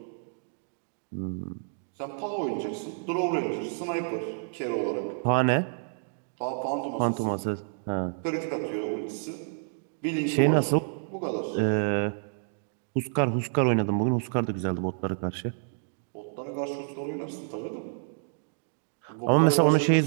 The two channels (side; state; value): left; silent; digital silence